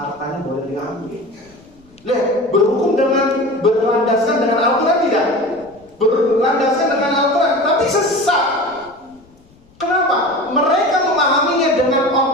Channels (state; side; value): noise; left; rumble, 30 dB below the sound